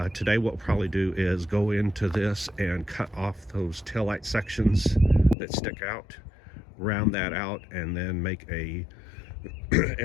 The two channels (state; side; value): drops out; right; at 5.4 s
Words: today what we'll probably do is go into this and cut off those taillight sections that stick out, round that out, and then make a